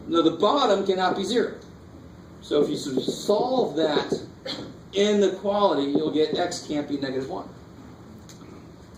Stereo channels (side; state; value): both; identical; correlation 1.00